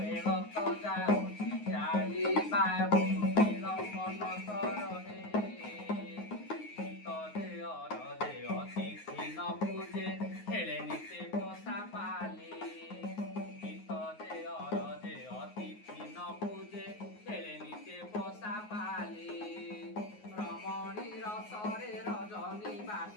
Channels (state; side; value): late; right; 9.5 ms